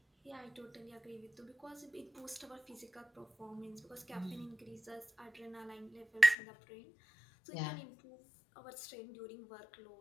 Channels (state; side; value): drops out; right; at 6.4 s